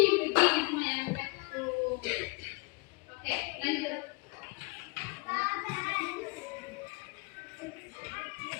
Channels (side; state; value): right; quieter; 28.8 dB